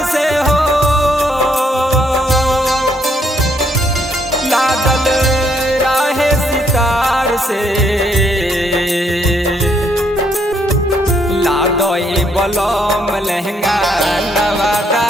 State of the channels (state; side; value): normal; both; correlation 0.71